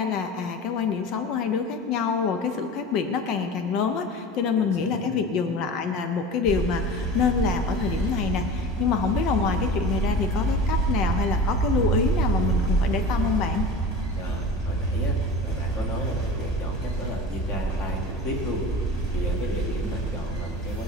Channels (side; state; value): both; normal; correlation 0.34